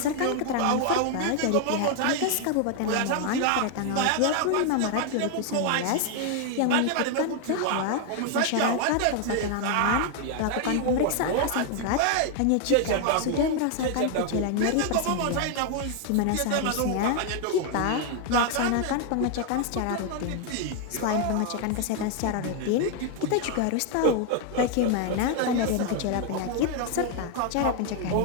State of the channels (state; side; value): different; both; correlation 0.00